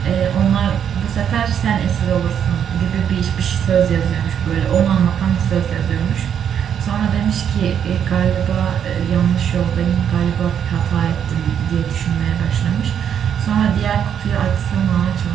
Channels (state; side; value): quieter; left; 8.6 dB